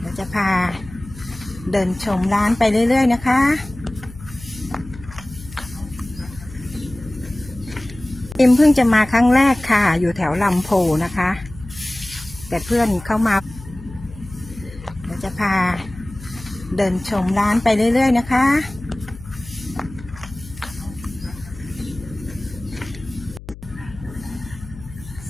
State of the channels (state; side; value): noise; left; hum, 16 dB below the sound